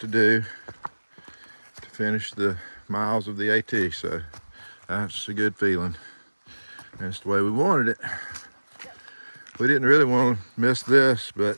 do to finish the miles of the AT. So that's a good feeling. That's the way we wanted it. We didn't really want to miss this, but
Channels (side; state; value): both; inverted; correlation -1.00